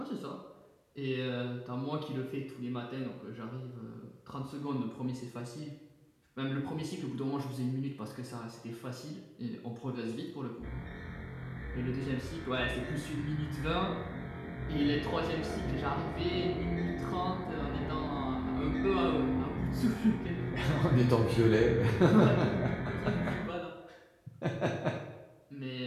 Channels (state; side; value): identical; both; correlation 1.00